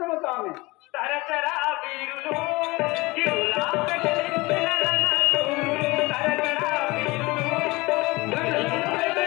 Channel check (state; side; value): quieter; right; 22.9 dB